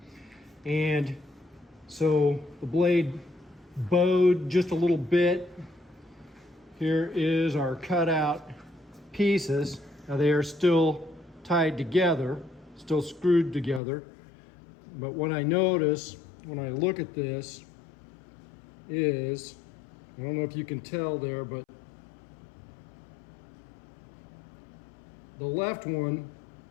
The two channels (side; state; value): right; drops out; at 13.8 s